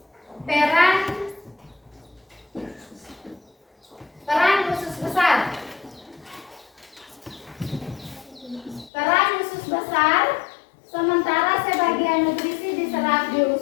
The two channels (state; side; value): drops out; right; at 8.9 s